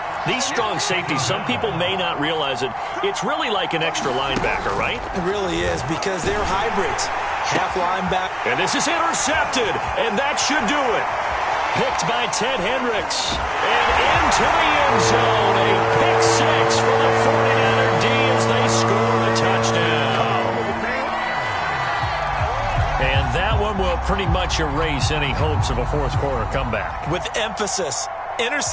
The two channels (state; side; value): identical; both; correlation 1.00